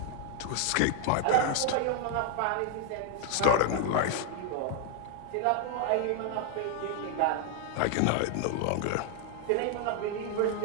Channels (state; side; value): different; both; correlation 0.00